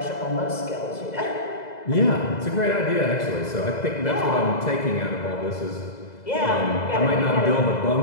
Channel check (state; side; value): late; right; 2.0 ms